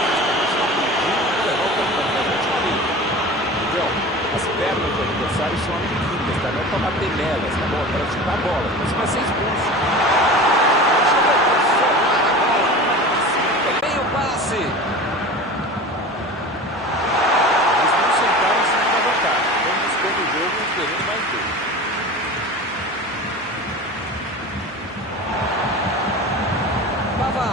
As pernas do adversário são amiguinhas, tá? Não é pra bater nelas, tá bom? Para chutar a bola. Então você vai ser expulso. Vem o passe. Eles não sentaram em cima da vantagem. Estão buscando o jogo e querendo mais gol. Bavá.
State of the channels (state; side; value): normal; both; correlation 0.34